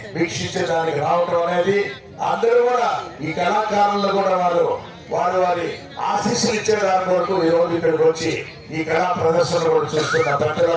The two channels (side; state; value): both; identical; correlation 1.00